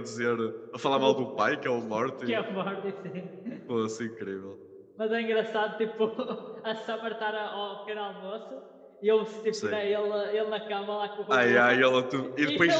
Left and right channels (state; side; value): identical; both; correlation 1.00